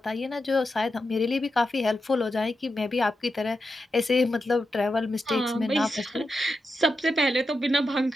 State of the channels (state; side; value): normal; both; correlation 0.88